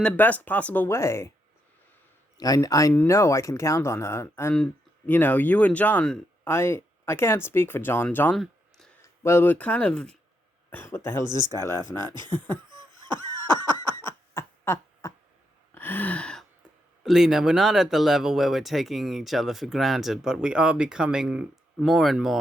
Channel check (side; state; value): both; normal; correlation 0.80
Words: the best possible way. I know I can count on her, and you and John. I can't speak for John. John. Well, we're kind of. What the hell is this guy laughing at? Lena, we're not at the level where we're taking each other for granted, but we are becoming more and